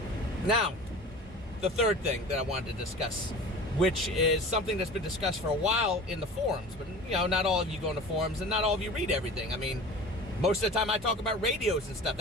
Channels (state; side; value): normal; both; correlation 0.38